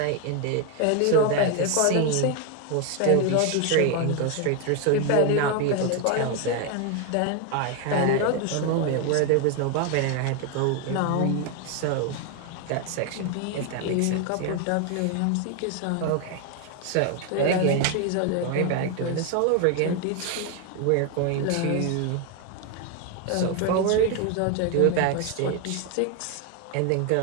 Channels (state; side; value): different; both; correlation 0.01